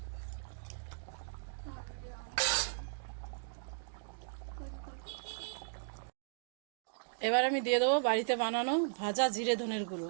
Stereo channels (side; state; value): left; silent; digital silence